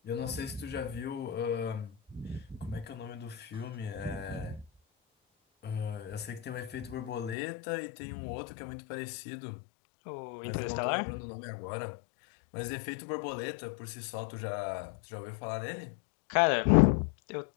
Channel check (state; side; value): drops out; right; at 7.4 s